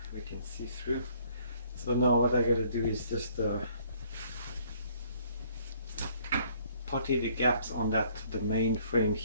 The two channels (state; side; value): inverted; both; correlation -0.62